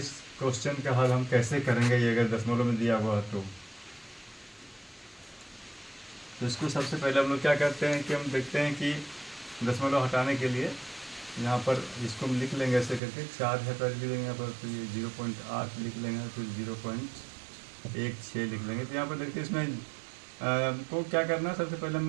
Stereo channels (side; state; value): left; drops out; at 13.0 s